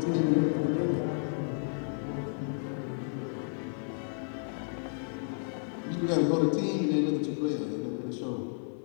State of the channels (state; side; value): silent; right; 56 dB below the other